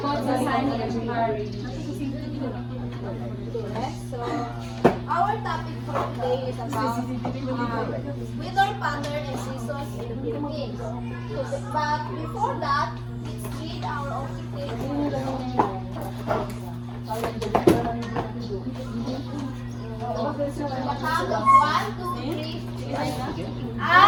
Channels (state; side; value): identical; both; correlation 1.00